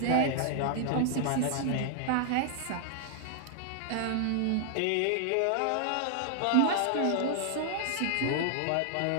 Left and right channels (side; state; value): both; different; correlation -0.01